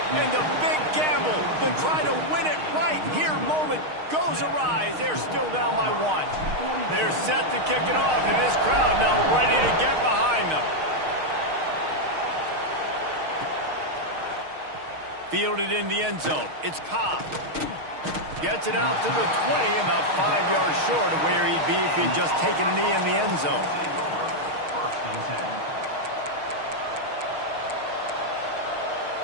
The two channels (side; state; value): left; late; 6.5 ms